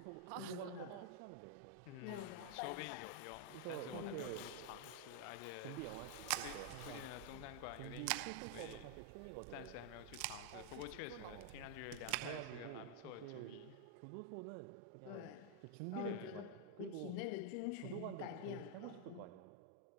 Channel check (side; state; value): both; different; correlation 0.00